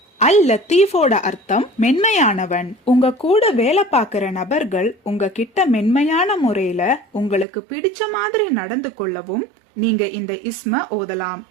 அல் லத்தீஃபோட அர்த்தம் மென்மையானவன். உங்க கூட வேலை பார்க்கிற நபர்கள் உங்க கிட்ட மென்மையான முறையில உங்களுக்கு பிடிச்ச மாதிரி நடந்து கொள்ளவும் நீங்க இந்த இஸ்ம ஓதலாம்.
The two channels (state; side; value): drops out; left; at 7.5 s